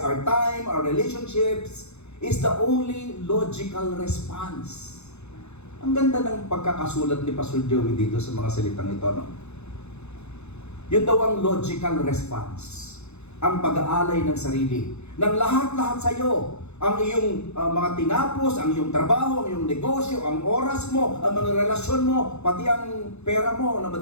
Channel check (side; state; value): right; late; 0.81 ms